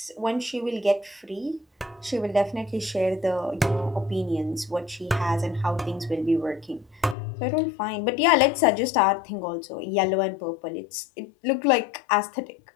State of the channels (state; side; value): drops out; right; at 7.2 s